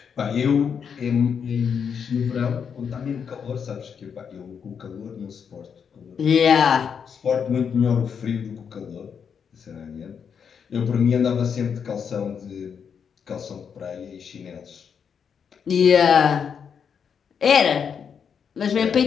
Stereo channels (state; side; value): quieter; right; 7.0 dB